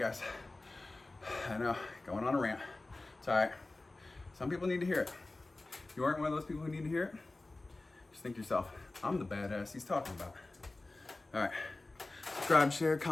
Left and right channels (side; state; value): right; quieter; 3.0 dB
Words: I know, going on a rant. It's alright. Some people need to hear it. If you aren't one of those people who need to hear it, just think to yourself, I'm the badass he's talking about. All right, subscribe, share,